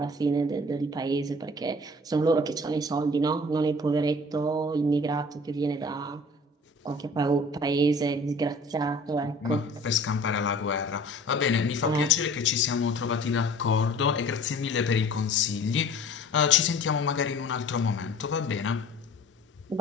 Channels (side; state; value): both; normal; correlation 0.46